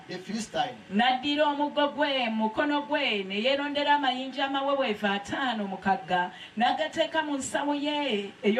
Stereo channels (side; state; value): both; identical; correlation 1.00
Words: the Philistine. N'addira omuggo gwe mu mukono gwe ne yeerondera amayinja amaweweevu 5 mu kagga n'agateeka mu nsawo ye